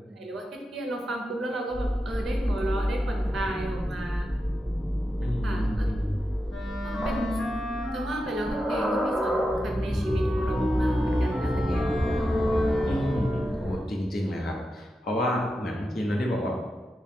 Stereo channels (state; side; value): normal; both; correlation 0.89